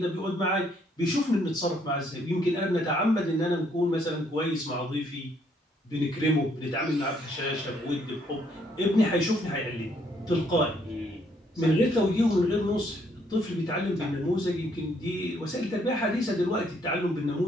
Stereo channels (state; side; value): normal; both; correlation 0.69